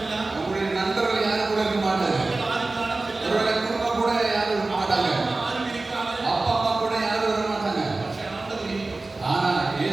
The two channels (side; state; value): left; quieter; 3.3 dB